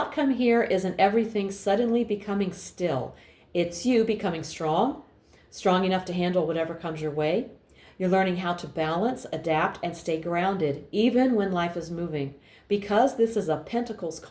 here isn't everything suddenly becoming still. It's you becoming strong enough to handle whatever comes your way. You're learning how to balance, adapt, and stay grounded, even when life is moving. Because this is a Pentacles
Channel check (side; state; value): both; identical; correlation 1.00